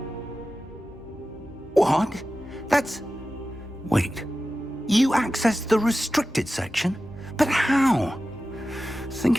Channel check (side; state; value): both; normal; correlation 0.94